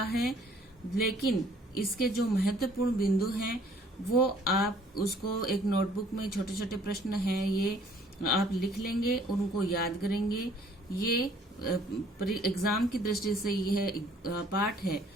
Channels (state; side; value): normal; both; correlation 0.58